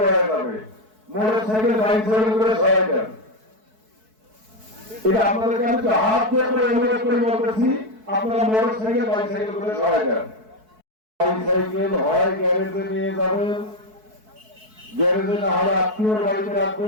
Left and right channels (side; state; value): left; late; 4.6 ms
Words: হয়ে যাবে। মোটর সাইকেল বাইসাইকেল করে সহায় দেন। এটা আপনাদেরকে আমি তো হাত দিয়ে করে অনুরোধ করে বলতেছি, আপনারা মোটর সাইকেল বাইসাইকেল করে সহায় দেন। বাইসাইকেল হয় গ্যারেজে নিয়ে যাবেন, গ্যারেজে না হলে আত্মীয়র বাড়িতে